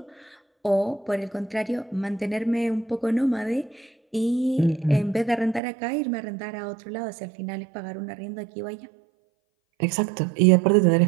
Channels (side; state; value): left; drops out; at 5.6 s